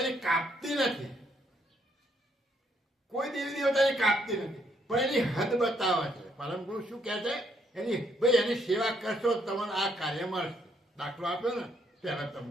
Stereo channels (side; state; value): both; normal; correlation 0.71